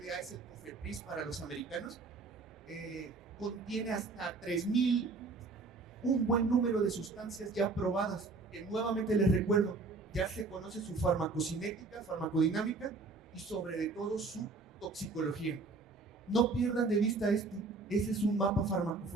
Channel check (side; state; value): left; quieter; 3.8 dB